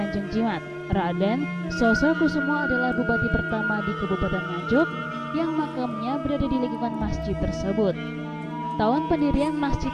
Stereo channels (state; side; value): identical; both; correlation 1.00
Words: Jimat. Raden Sosrokusumo adalah bupati pertama di Kabupaten Nganjuk yang makamnya berada di lingkungan masjid tersebut. Tahun pendirian masjid